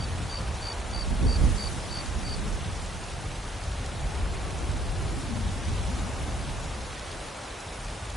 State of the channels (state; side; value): normal; both; correlation 0.65